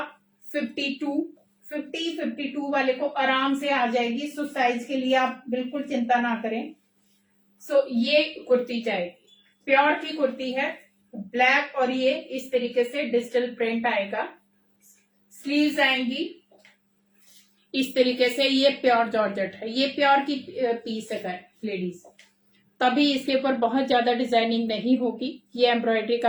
52, 52 वाले को आराम से आ जाएगी। सो साइज के लिए आप बिल्कुल चिंता ना करें। सो ये कुर्ती जाएगी, प्योर की कुर्ती है, ब्लैक, और ये इस तरीके से डिजिटल प्रिंट आएगा। स्लीव्स आएंगी इस तरीके से। ये प्योर जॉर्जेट है, ये प्योर की पीस है लेडीज, तभी इसके ऊपर बहुत ज्यादा डिजाइनिंग नहीं होगी। ये एम्ब्रॉयडरी का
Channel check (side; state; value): both; identical; correlation 1.00